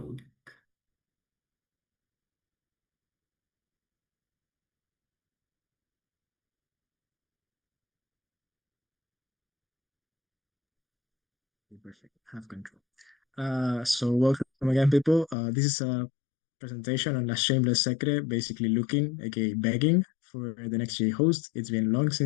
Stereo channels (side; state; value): right; drops out; at 15.4 s